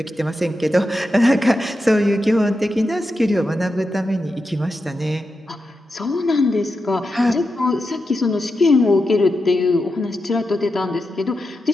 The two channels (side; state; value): both; normal; correlation 0.89